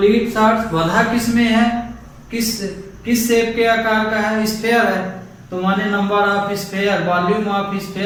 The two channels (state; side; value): identical; both; correlation 1.00